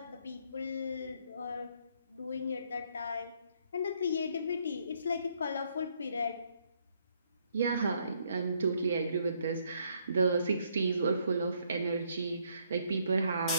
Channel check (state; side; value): inverted; both; correlation -0.70